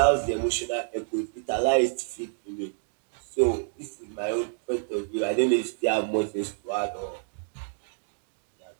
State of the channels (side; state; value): left; silent; digital silence